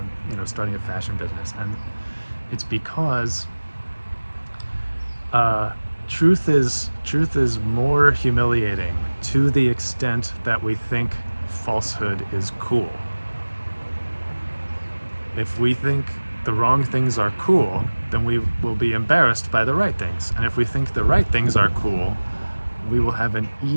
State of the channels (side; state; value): both; inverted; correlation -1.00